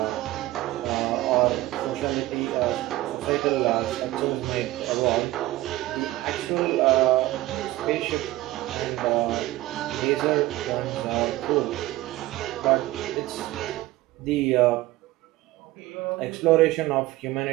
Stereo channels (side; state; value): left; quieter; 17.2 dB